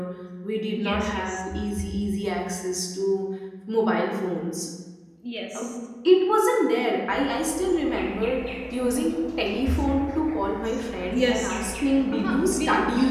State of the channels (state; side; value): identical; both; correlation 1.00